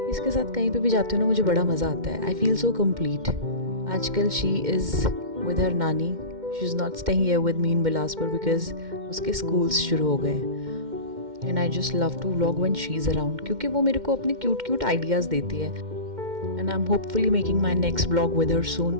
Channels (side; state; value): left; late; 2.1 ms